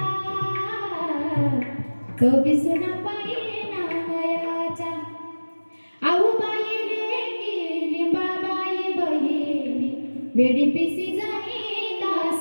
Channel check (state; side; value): inverted; both; correlation -1.00